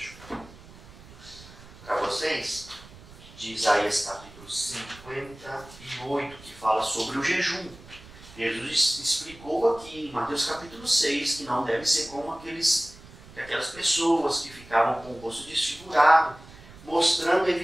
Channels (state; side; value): noise; right; rumble, 20 dB below the sound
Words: para vocês, de Isaías capítulo 58, que fala sobre o jejum. Jesus explicou aqui em Mateus capítulo 6 que não deve ser como aquelas pessoas que ficavam com o rosto desfigurado, mostrando